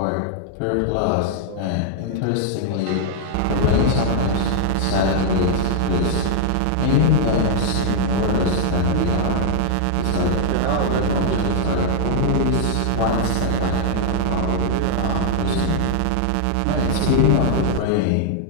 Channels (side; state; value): both; different; correlation 0.00